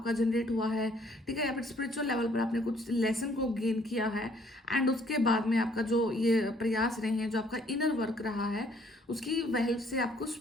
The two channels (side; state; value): both; normal; correlation 0.63